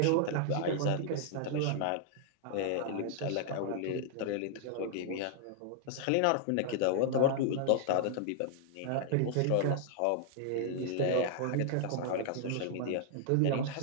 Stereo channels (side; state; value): both; different; correlation -0.01